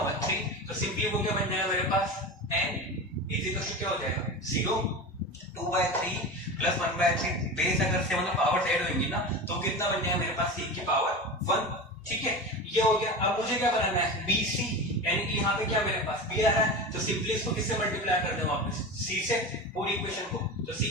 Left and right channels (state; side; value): normal; both; correlation 0.27